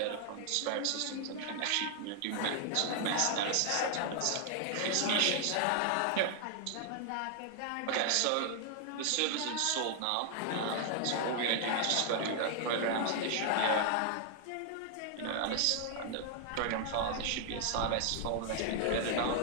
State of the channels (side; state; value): both; different; correlation 0.00